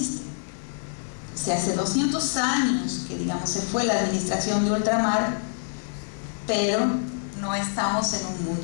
O sea, hace 200 años que, digamos, se fue la administración de ultramar, pero no estamos en un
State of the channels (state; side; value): silent; right; digital silence